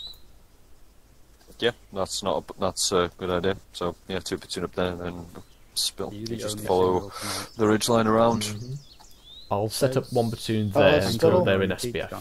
Yeah, that's a good idea. So yeah, 2 platoon up there and then spill. You just follow the ridge line around. I'll set up 1 platoon there until they're in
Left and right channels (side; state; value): both; identical; correlation 1.00